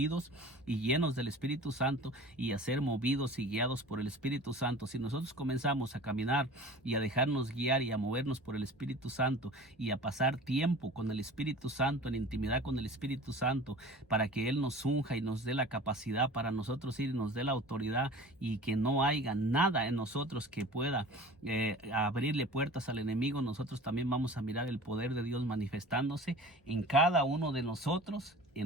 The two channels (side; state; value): both; normal; correlation 0.40